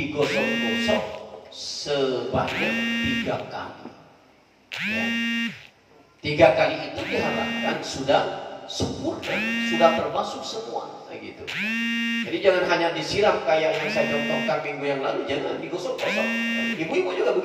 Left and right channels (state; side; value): identical; both; correlation 1.00